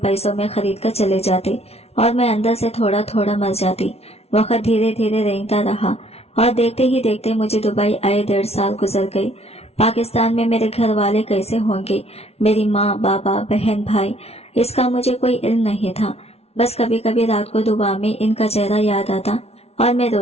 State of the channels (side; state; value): right; late; 0.30 ms